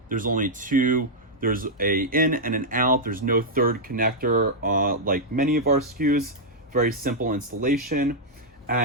there's only two. There's a in and an out. There's no third connector like many of our SKUs. Very simple installation.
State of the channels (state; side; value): normal; both; correlation -0.06